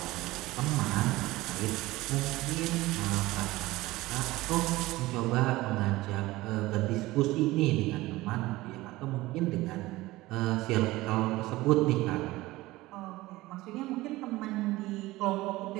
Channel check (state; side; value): quieter; left; 18.7 dB